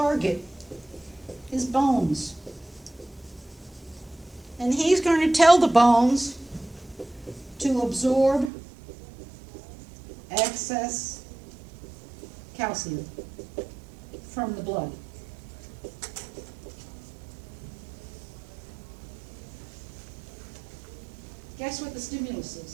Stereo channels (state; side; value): drops out; left; at 8.5 s